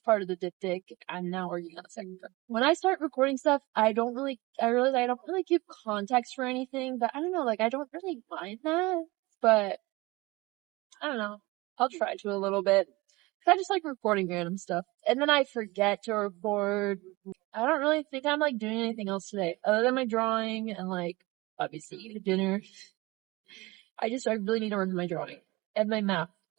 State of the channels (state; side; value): quieter; left; 22.4 dB